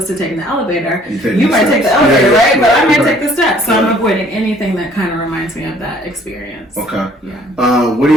to taking the elevator, you might take the elevator, right? But I might take the steps. So I'm avoiding anything that kind of reminds me of that experience. Okay. Yeah. What are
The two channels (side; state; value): both; normal; correlation 0.58